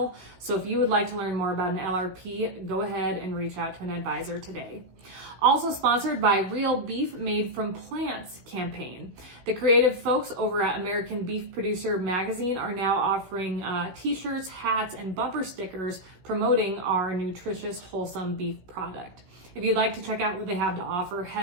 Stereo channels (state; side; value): late; left; 16 ms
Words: So if you would like to learn more about an LRP, go ahead and reach out to an advisor today. Also sponsored by Real Beef Made from Plants campaign. The creative folks over at American Beef Producer Magazine are now offering t-shirts, hats, and bumper stickers promoting our nutritious, wholesome beef product. If you'd like to check out what they have to offer,